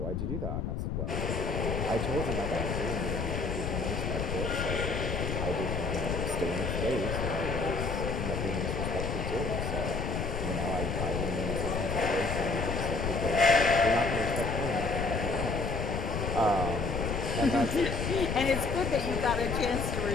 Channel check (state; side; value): noise; left; rumble, 2 dB below the sound